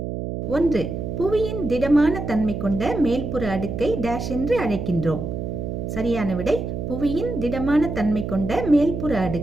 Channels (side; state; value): right; noise; hum, 5 dB below the sound